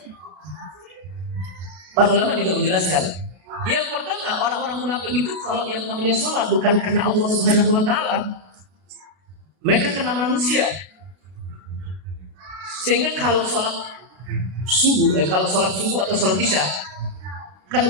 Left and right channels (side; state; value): left; late; 32 ms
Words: Para ulama juga menjelaskan, yang pertama, orang-orang munafik itu kalau yang namanya sholat bukan karena Allah Subhanahu wa taala, mereka karena manusia. Sehingga kalau sholat subuh atau sholat isya, kan